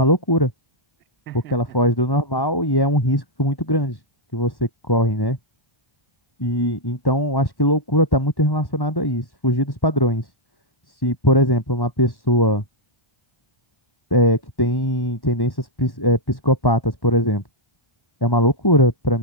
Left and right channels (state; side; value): late; right; 1.1 ms